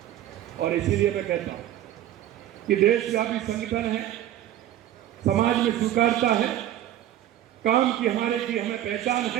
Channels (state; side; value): quieter; left; 12.4 dB